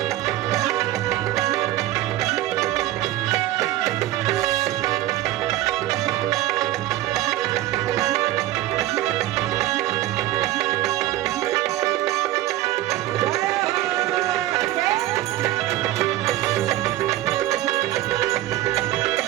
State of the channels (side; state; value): left; quieter; 15.0 dB